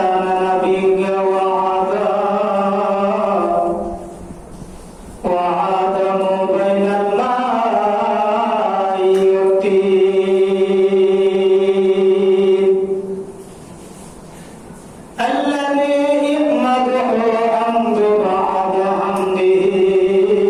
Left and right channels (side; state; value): both; identical; correlation 1.00